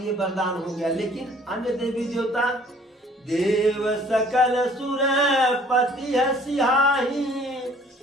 वरदान हो गया। लेकिन अन्य देवी देवता, देव सकल सुर पति सिहाही,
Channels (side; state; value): both; normal; correlation 0.56